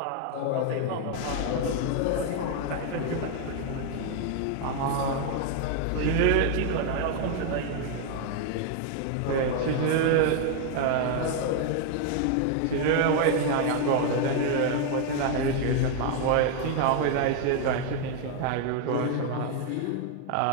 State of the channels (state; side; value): different; both; correlation 0.01